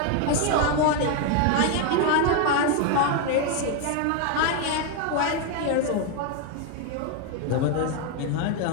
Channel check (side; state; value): both; different; correlation 0.01